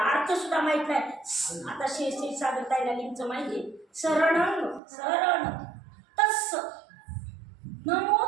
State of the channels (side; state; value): left; drops out; at 4.8 s